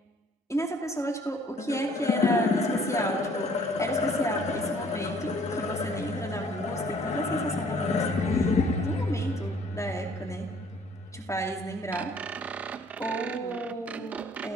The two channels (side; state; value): both; normal; correlation 0.58